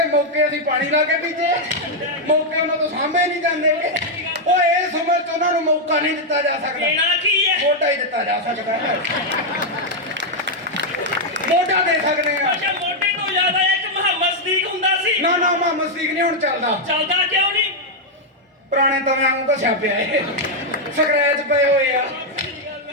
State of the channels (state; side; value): normal; both; correlation -0.01